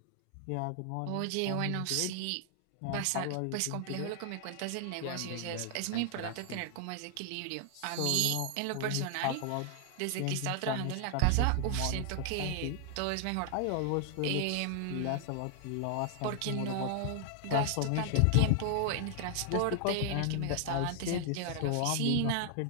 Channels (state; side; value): different; both; correlation 0.00